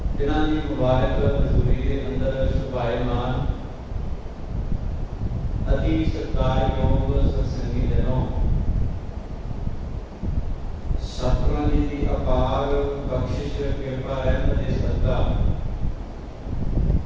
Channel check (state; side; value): identical; both; correlation 1.00